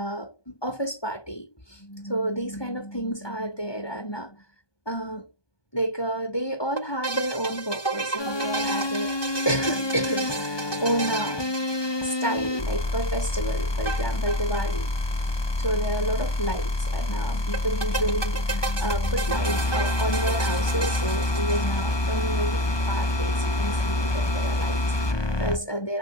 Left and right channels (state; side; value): late; right; 1.2 ms